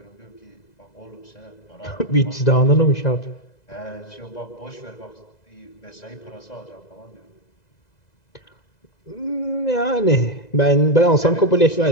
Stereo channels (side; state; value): right; late; 2.0 ms